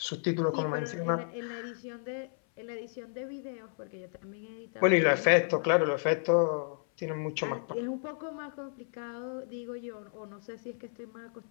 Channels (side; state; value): right; silent; 56 dB below the other